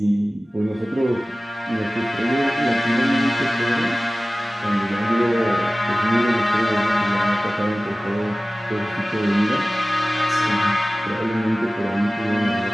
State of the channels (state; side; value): normal; both; correlation 0.97